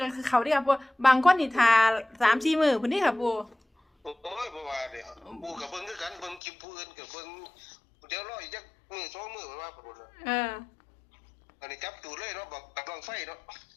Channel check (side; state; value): right; drops out; at 6.4 s